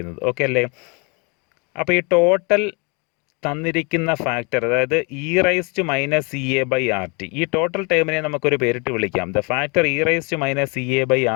ഓക്കെ അല്ലേ? അപ്പോൾ ഈ ടോട്ടൽ തന്നിരിക്കുന്ന ഫാക്ടർ, അതായത് e raise to minus E A by R T, ഈ ടോട്ടൽ ടേമിനെ നമുക്കൊരു പേരിട്ട് വിളിക്കാം. The factor e raise to minus E A by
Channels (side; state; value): right; quieter; 31.6 dB